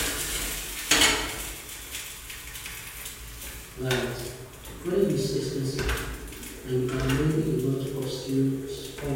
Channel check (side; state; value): both; identical; correlation 1.00